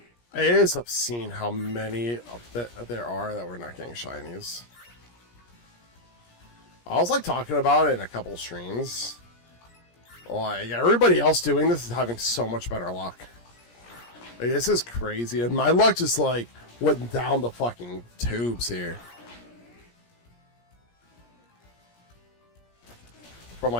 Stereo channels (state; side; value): late; right; 17 ms